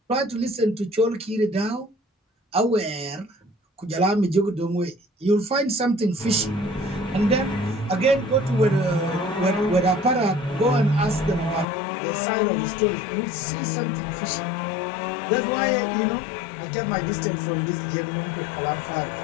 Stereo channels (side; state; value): right; drops out; at 11.7 s